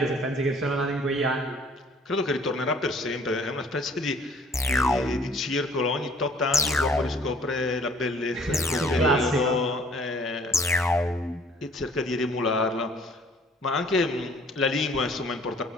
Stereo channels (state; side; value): normal; both; correlation 0.56